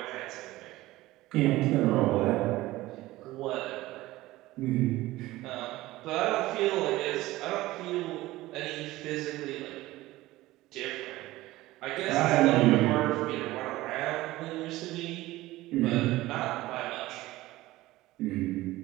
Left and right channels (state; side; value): quieter; left; 17.7 dB